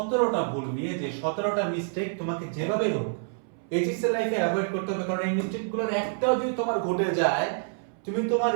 ভুল নিয়ে, যে 17টা মিস্টেক তোমাকে যেভাবে হোক এইচএসসি লাইফে অ্যাভয়েড করতে হবে। কারণ এই মিস্টেকগুলোর একটাও যদি তোমার ঘটে যায়, তুমি তোমার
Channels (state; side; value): silent; left; 60 dB below the other